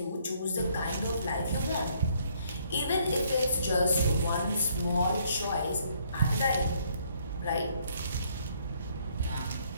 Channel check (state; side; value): inverted; both; correlation -0.67